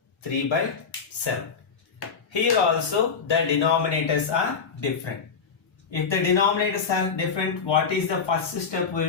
3 by 7. Here also the denominators are different. If the denominators are different, what is the first step we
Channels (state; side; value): quieter; right; 5.8 dB